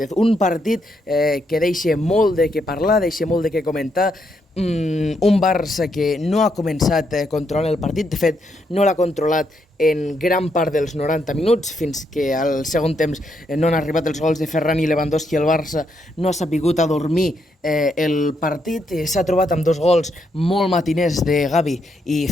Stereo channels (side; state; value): both; normal; correlation 0.77